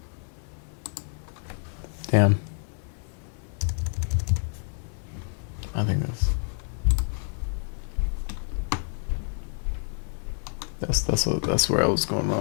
Damn. I think that's where I was going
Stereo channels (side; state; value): right; silent; 59 dB below the other